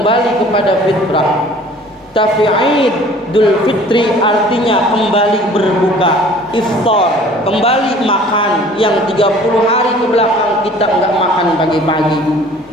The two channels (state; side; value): normal; both; correlation 0.50